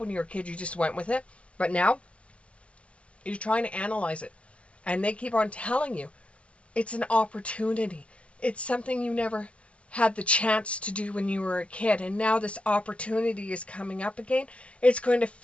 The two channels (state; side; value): late; right; 0.060 ms